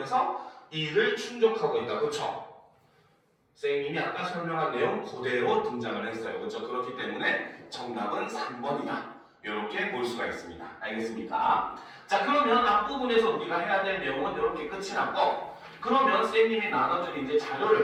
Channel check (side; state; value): both; identical; correlation 1.00